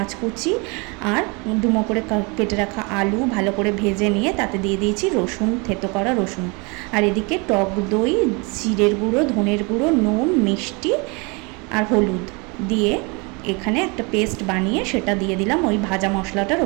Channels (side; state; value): left; quieter; 29.7 dB